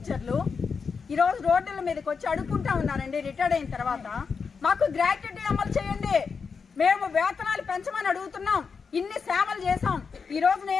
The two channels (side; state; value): right; quieter; 5.5 dB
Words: ఈ రోజు రోడ్ల మీదకి వచ్చి అడుక్కుంటా ఉన్నారండి. రిటైర్డ్ అయిన తర్వాత మాకు గ్రాట్యుటీ అమలు చేయండి, మేము వేతనాలు పెంచమని అడుగుతున్నాం. ఇన్ని సేవలు చేసాం. ఈ రోజు